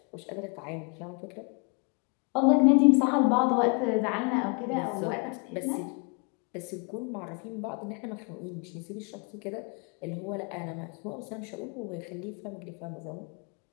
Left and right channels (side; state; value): right; quieter; 34.5 dB